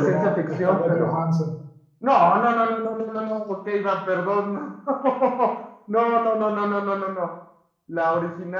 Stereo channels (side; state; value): both; identical; correlation 1.00